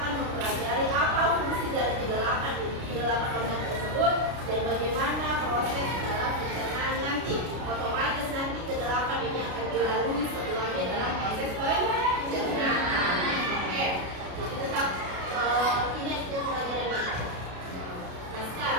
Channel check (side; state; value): left; late; 32 ms